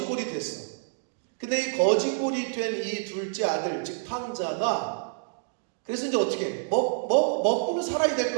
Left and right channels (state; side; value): silent; left; digital silence